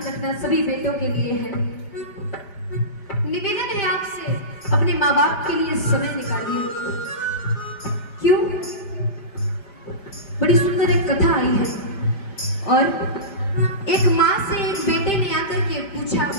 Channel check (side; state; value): right; late; 5.0 ms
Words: रखना सभी बेटों के लिए है, निवेदन है आपसे, अपने माँ बाप के लिए समय निकालिए। क्यों? बड़ी सुंदर एक कथा आई है और एक माँ से एक बेटे ने आकर के पूछा,